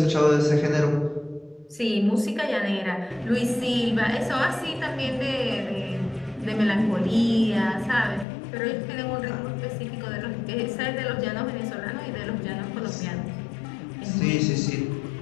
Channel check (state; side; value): drops out; right; at 8.2 s